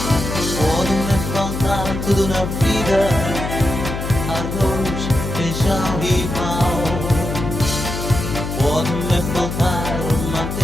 Pode-me faltar tudo na vida, arroz, feijão e pão. Pode-me faltar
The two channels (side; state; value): left; noise; hum, 5 dB below the sound